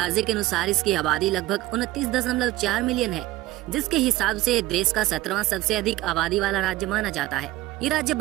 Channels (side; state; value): left; quieter; 16.6 dB